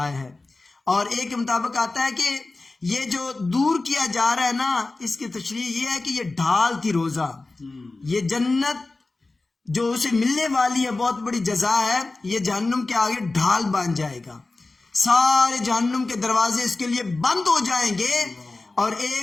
ہے، اور ایک کے مطابق آتا ہے کہ یہ جو دور کیا جا رہا ہے نا، اس کی تشریح یہ ہے کہ یہ ڈھال تھی روزہ. یہ جنت جو اسے ملنے والی ہے بہت بڑی جزا ہے، یہ جہنم کے آگے ڈھال بن جائے گا. سارے جہنم کے دروازے اس کے لیے بند ہو جائیں گے، اور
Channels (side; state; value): right; quieter; 3.3 dB